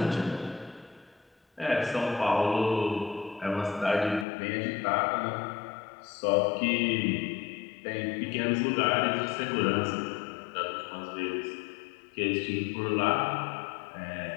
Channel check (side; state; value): right; drops out; at 4.2 s